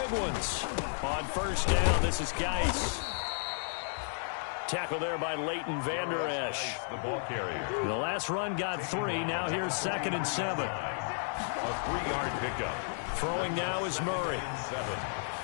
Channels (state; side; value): silent; right; digital silence